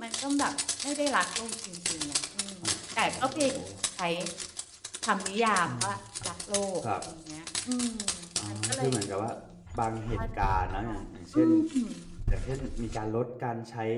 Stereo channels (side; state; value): both; identical; correlation 1.00